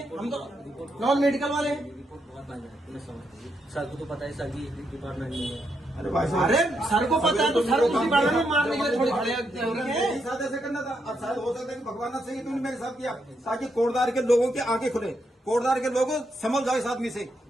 हम तो नॉन मेडिकल वाले हैं। रिपोर्ट बहुत महंगी है, मैं समझता हूँ। सर को तो पता है, सर भी डिपार्टमेंट में है। अरे भाई साहब, अरे सर को पता है तो सर उसी बारे में मारने के लिए थोड़ी खड़े हैं। मेरे साथ ऐसे करना था। अब शायद हो सकता है कि भगवान से ही तुमने मेरे साथ किया, ताकि कोटदार के लोगों की आंखें खुले, कोटदार के लोगों समझ जाओ इस आदमी से।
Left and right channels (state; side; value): normal; both; correlation 0.80